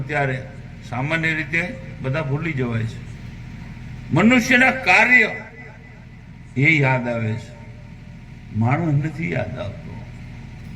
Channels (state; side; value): identical; both; correlation 1.00